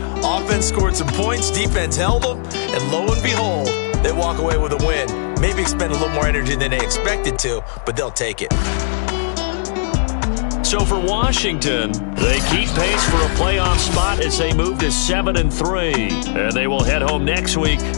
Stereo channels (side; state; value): right; silent; digital silence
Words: Offense scored some points, defense held them, and lo and behold, they walk away with a win. Maybe expend a little more energy than they expected to, but they'll take it. So for Washington, they keep pace for a playoff spot as they move to 7-3. And they will head home next week